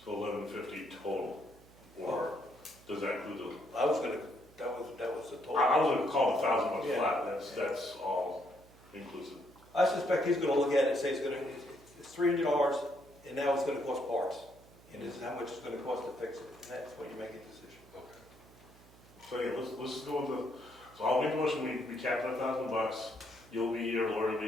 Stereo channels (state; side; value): noise; right; hum, 24 dB below the sound